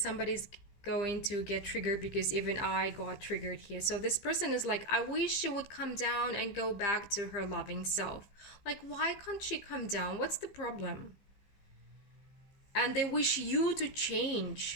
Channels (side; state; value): right; late; 15 ms